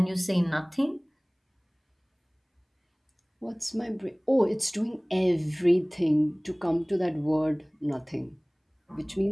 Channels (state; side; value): identical; both; correlation 1.00